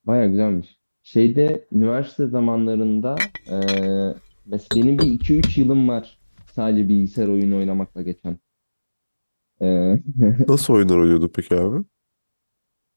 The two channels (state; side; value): inverted; both; correlation -1.00